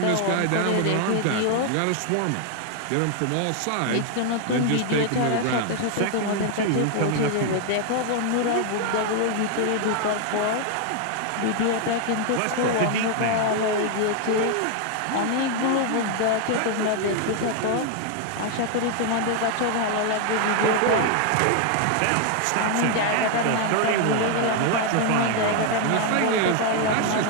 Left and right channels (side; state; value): both; different; correlation 0.00